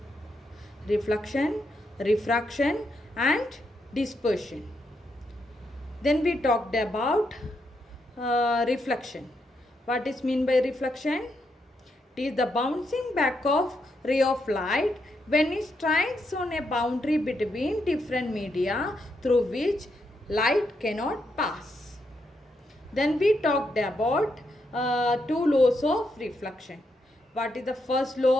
Reflection, refraction, and dispersion. Then we talked about reflection. What is mean by reflection? It is the bouncing back of ray of light when it strikes on a boundary between different media through which light cannot pass. Then we talked about two laws of reflection. What is the first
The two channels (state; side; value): normal; both; correlation 0.80